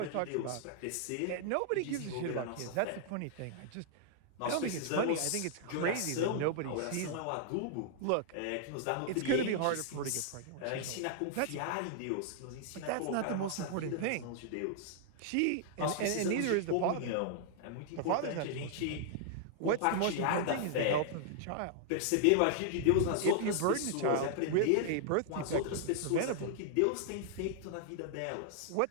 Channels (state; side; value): different; both; correlation -0.01